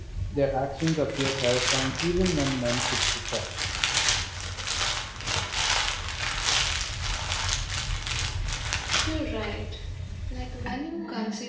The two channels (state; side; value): identical; both; correlation 1.00